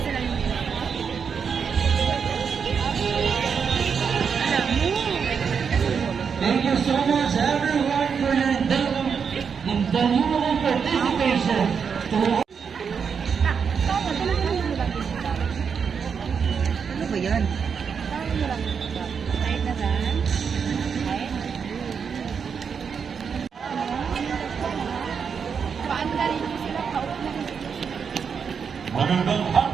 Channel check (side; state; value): left; quieter; 6.5 dB